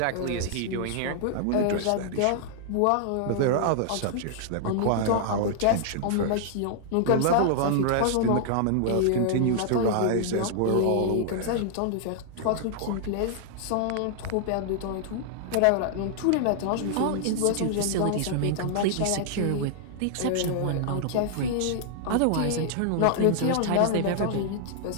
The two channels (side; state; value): both; different; correlation -0.01